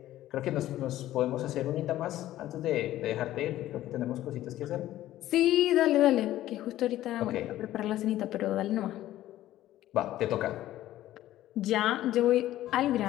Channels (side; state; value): right; quieter; 14.1 dB